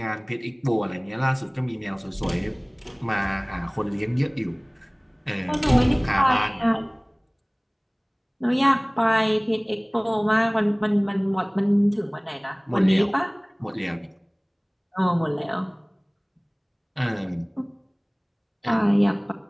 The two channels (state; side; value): identical; both; correlation 1.00